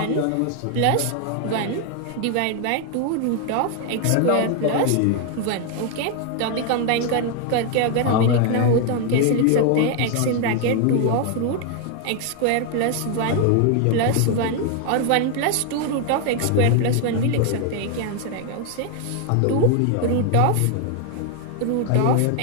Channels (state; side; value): different; both; correlation 0.00